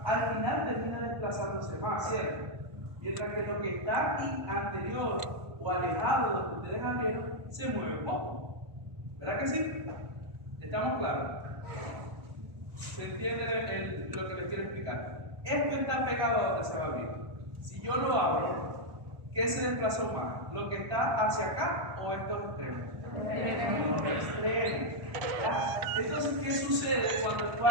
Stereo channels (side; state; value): left; late; 1.3 ms